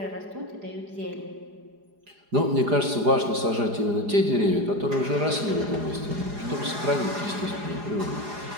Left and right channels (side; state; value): left; late; 4.9 ms